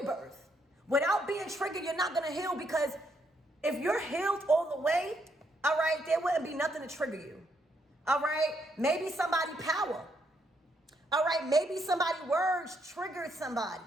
Without being triggered, you're not going to heal, because if you're healed all the way, all right, there wouldn't be nothing to trigger you. All right, maybe somebody power. All right, maybe somebody words triggered somebody.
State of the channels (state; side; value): normal; both; correlation 0.75